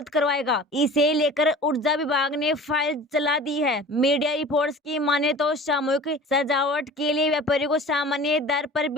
करवाएगा। इसे लेकर ऊर्जा विभाग ने फाइल चला दी है। मीडिया रिपोर्ट्स की माने तो सामूहिक सजावट के लिए व्यापारियों को सामान्य दर पर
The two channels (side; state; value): both; normal; correlation 0.41